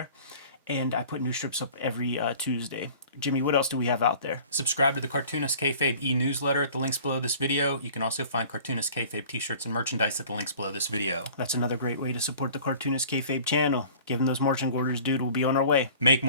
And I put new strips up every Tuesday. Jimmy, what else do we have out there? Subscribe to the Cartoonist Kayfabe e-newsletter at the links below this video. You can also find Cartoonist Kayfabe t-shirts and merchandise at the links below this video. That's another great way to support the Cartoonist Kayfabe channel. Give them those marching orders, dude. We'll be on our way. Make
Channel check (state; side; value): inverted; both; correlation -0.47